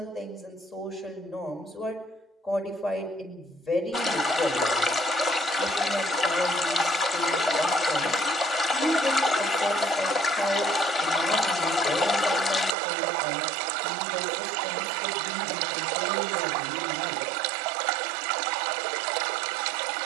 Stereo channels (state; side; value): drops out; left; at 12.8 s